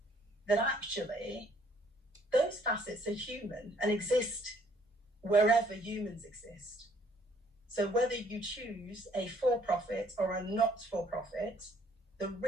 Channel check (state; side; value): normal; both; correlation 0.63